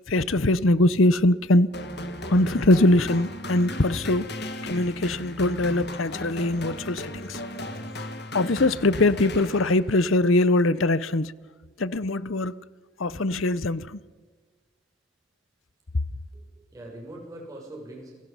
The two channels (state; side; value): normal; both; correlation 0.46